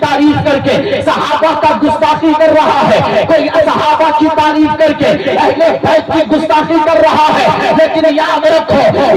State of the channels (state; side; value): identical; both; correlation 1.00